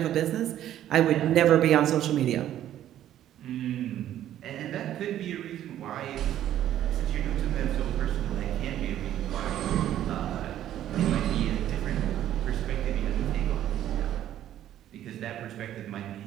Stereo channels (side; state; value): left; quieter; 11.9 dB